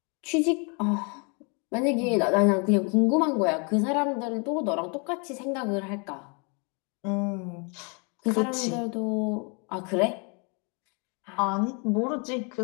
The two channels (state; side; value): quieter; right; 34.4 dB